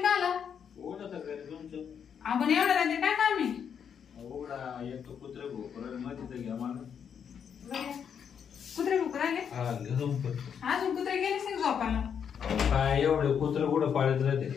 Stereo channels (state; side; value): quieter; right; 7.6 dB